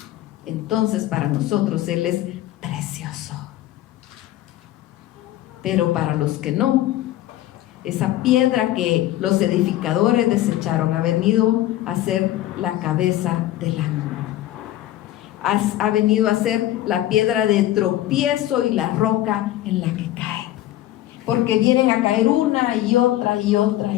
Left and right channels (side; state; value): right; quieter; 14.3 dB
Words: entonces para nosotros Él es precioso. Pero para los que no, esa piedra que los edificadores desecharon ha venido a ser la cabeza del ángulo. Ha venido a ser la piedra de tropiezo y la roca en la que cae. Porque vienen a caer una y otra y otra